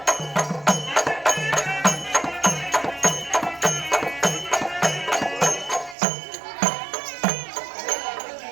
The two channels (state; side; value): drops out; left; at 6.0 s